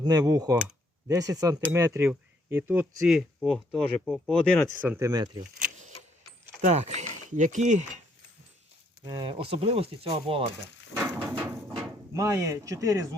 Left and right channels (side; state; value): both; normal; correlation 0.69